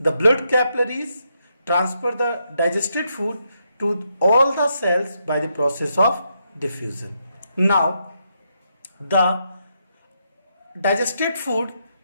blood capillaries transfer the digested food to all the cells by the process of diffusion. Now the digested food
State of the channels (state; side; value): inverted; both; correlation -0.80